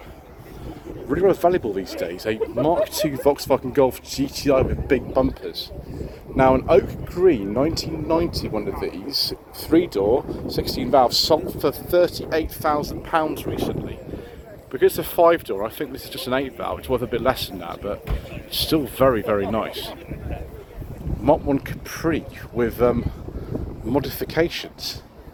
rather valuable these days, a Mark II Volkswagen Golf GTI with big bumpers. Now an oak green 1990 one of these, 3-door, 16 valves, sold for £38,000 recently. Because it's a 5-door, I think this is just an 8 valve, it's worth a bit less than that, but it's still very, very nice. Mark 1 Capri with modifications.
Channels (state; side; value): identical; both; correlation 1.00